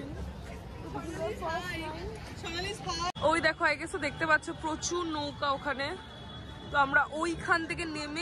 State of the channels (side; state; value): both; identical; correlation 1.00